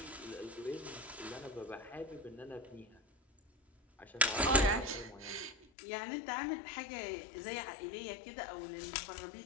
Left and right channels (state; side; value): drops out; right; at 5.7 s